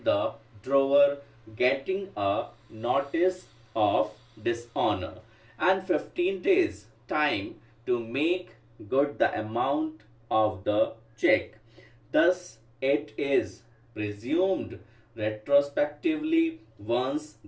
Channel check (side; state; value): both; identical; correlation 1.00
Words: the drawer getting a notice of dishonor and 15 days time to make good the amount of the check. Thus, it is presumed retrospectively once